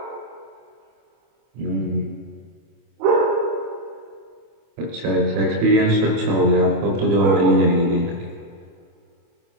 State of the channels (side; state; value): left; late; 25 ms